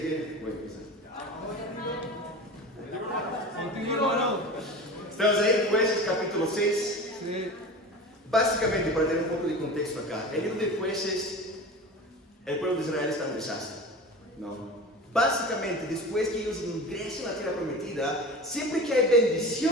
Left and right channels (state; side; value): normal; both; correlation 0.33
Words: voy a empezar. Contigo, hermano. Estamos ahí, Jueces capítulo 6. Sí. Básicamente, para tener un poco de contexto acá, en el libro de Jueces, el pueblo de Israel está en desastre. ¿No? Básicamente, después que ellos ingresen a la tierra prometida, siempre que hay